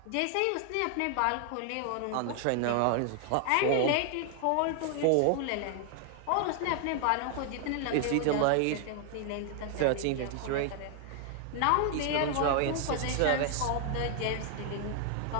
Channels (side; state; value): both; different; correlation 0.00